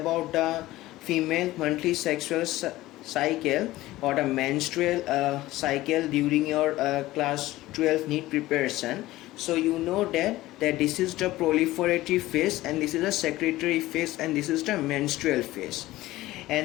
the female monthly sexual cycle or the menstrual cycle during your class 12 NEET preparation. So you know that this is the proliferative phase, and this is the secretory phase, and this is the menstrual phase.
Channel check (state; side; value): quieter; right; 17.1 dB